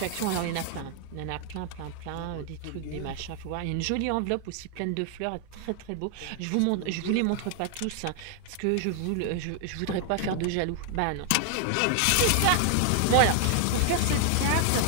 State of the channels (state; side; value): different; both; correlation 0.00